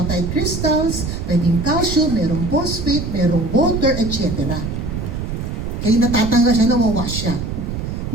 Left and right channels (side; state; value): right; noise; rumble, 4 dB below the sound